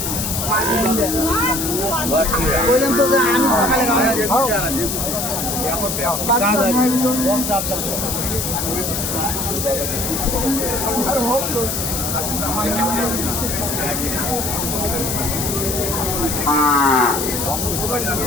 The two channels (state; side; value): noise; left; hiss, 2 dB below the sound